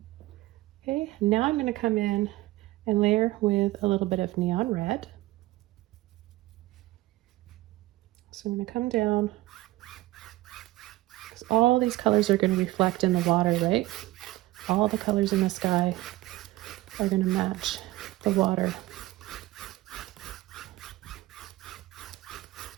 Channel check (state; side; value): quieter; left; 18.1 dB